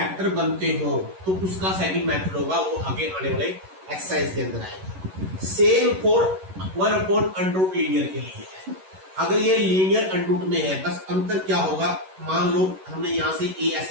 बनते हो तो उसका सेकंड मेथड होगा, वो आगे आने वाले एक्सरसाइज के अंदर आएगा। Same for 1 upon under root linear के लिए है। अगर ये लीनियर अंडर रूट में है, बस अंतर क्या होगा, मान लो हमने यहां से a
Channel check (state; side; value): late; left; 11 ms